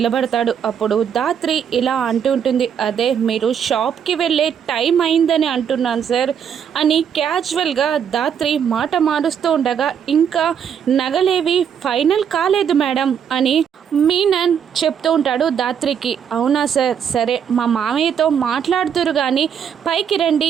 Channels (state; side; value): quieter; left; 8.0 dB